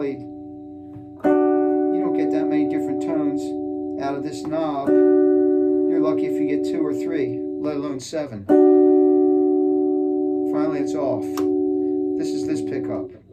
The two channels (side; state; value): both; identical; correlation 1.00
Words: you don't get that many different tones out of this knob. You're lucky if you get 2 or 3, let alone 7. Finally it's off. This is this pickup.